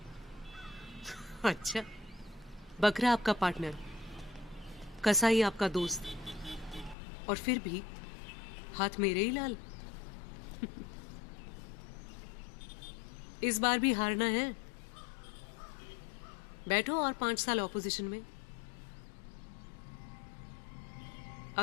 अच्छा, बकरा आपका पार्टनर, कसाई आपका दोस्त, और फिर भी हाथ मेरे ही लाल। इस बार भी हारना है। बैठो और 5 साल ऑपोजिशन में।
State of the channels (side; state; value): right; drops out; at 7.0 s